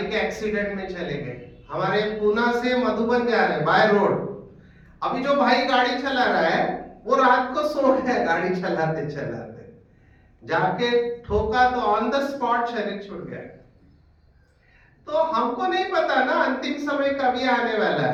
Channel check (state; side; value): identical; both; correlation 1.00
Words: के एक्सीडेंट में चले गए। हमारे पूना से मधुबन जा रहे बाय रोड। अभी जो भाई गाड़ी चला रहा है वो रात को सो गया गाड़ी चलाते चलाते, जाके ठोका तो ऑन द स्पॉट शरीर छूट गया। तो हमको नहीं पता ना अंतिम समय कभी आने वाला